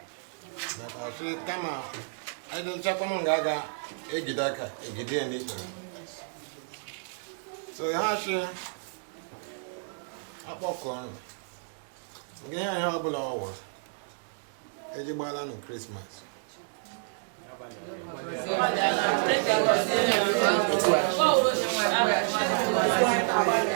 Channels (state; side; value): silent; left; digital silence